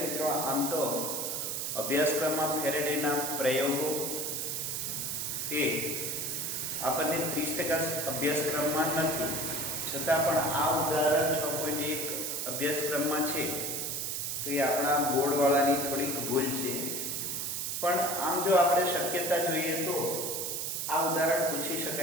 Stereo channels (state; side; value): noise; right; hiss, 2 dB below the sound